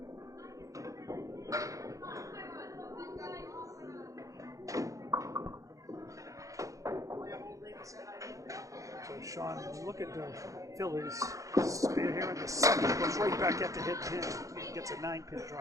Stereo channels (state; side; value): late; left; 0.16 ms